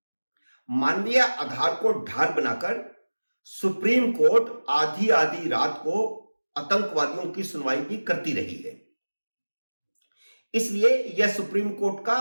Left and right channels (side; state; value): both; inverted; correlation -1.00